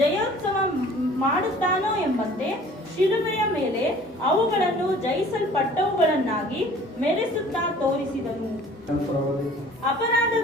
ಮಾಡುತ್ತಾನೋ ಎಂಬಂತೆ ಶಿಲುಬೆಯ ಮೇಲೆ ಅವುಗಳನ್ನು ಜಯಿಸಲ್ಪಟ್ಟವುಗಳನ್ನಾಗಿ ಮೆರೆಸುತ್ತಾ ತೋರಿಸಿದನು.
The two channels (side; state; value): both; normal; correlation 0.50